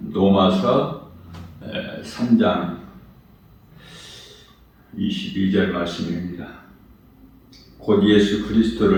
로마서 3장 22절 말씀입니다. 곧 예수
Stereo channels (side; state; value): both; identical; correlation 1.00